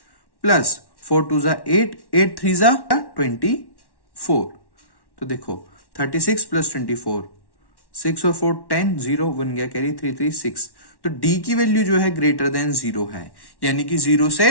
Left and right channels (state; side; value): late; right; 1.1 ms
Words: प्लस 4 2 जा 8, 8 3 जा 24। तो देखो, 36 प्लस 24 6 और 4 10, 0 1 गया कैरी, 3 3 6। तो डी की वैल्यू जो है ग्रेटर देन 0 है, यानी कि 0